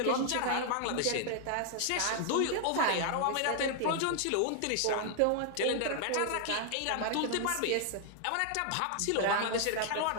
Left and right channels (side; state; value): both; different; correlation 0.00